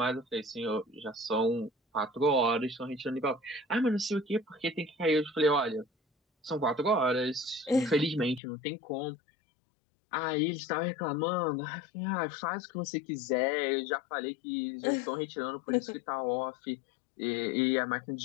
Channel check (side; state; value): right; drops out; at 8.4 s